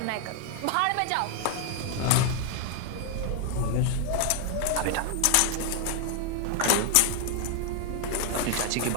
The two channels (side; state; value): both; different; correlation 0.00